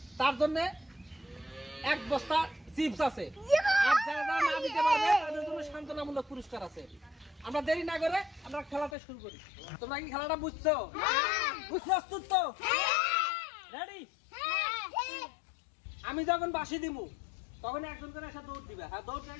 তার জন্য এক বস্তা চিপস আছে, আর যারা না দিতে পারবে তাদের জন্য সান্ত্বনামূলক পুরস্কার আছে। আমরা দেরি না করে আমরা খেলাটা শুরু করি। তোমরা কি খেলাটা বুঝছো? প্রস্তুত তো? রেডি? আমি যখন বাঁশি দিব তখন একজন করে এসে দৌড় দিবে। হ্যাঁ, দৌড় দিয়ে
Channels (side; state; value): right; drops out; at 9.0 s